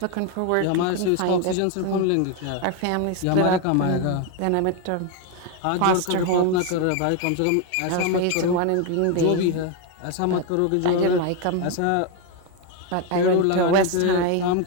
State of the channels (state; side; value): different; both; correlation 0.02